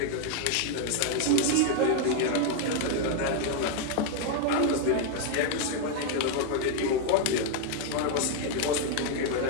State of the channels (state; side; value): different; both; correlation 0.00